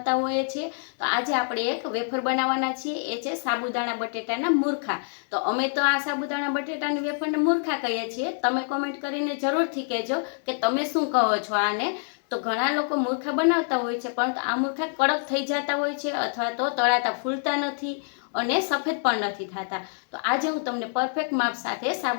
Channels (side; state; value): right; silent; 61 dB below the other